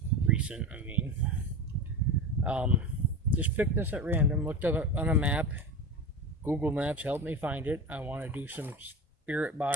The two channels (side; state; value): both; normal; correlation 0.26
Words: Recent, I mean. Just picked this at random, looked up on a map. Google Maps helped me find it. I want to do some spirit